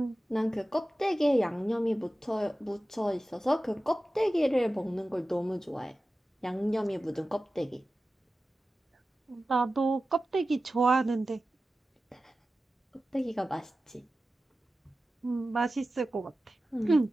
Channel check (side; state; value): both; normal; correlation 0.94